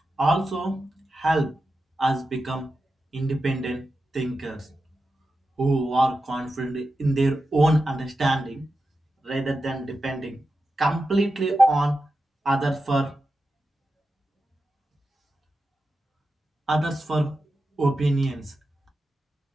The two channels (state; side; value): normal; both; correlation 0.90